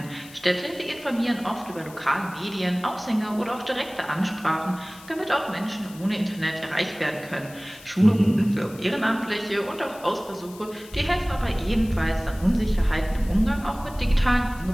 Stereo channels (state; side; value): noise; left; hiss, 20 dB below the sound